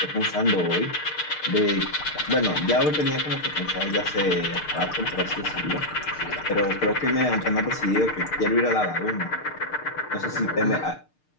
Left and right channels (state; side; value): late; right; 6.6 ms